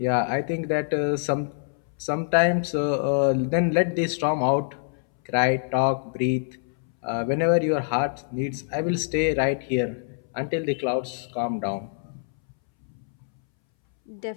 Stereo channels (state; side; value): silent; right; 61 dB below the other